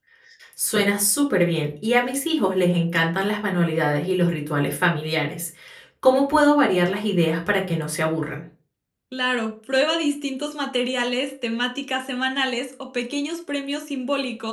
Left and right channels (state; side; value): identical; both; correlation 1.00